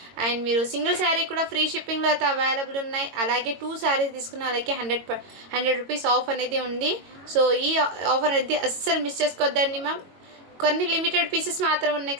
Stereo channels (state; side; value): late; left; 22 ms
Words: అండ్ మీరు సింగిల్ శారీ కూడా ఫ్రీ షిప్పింగ్లో అయితే అవైలబుల్ ఉన్నాయి. అలాగే 2 శారీస్ తీసుకున్న అలాగే 100 రూపీస్ ఆఫ్ అనేది ఉంది. సో ఈ ఆఫర్ అనేది అస్సలు మిస్ చేసుకోవద్దండి మ్యామ్. కొన్ని లిమిటెడ్ పీసెస్ మాత్రం ఉన్నాయి